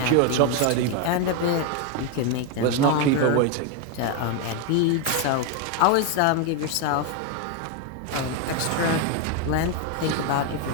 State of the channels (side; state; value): both; different; correlation 0.01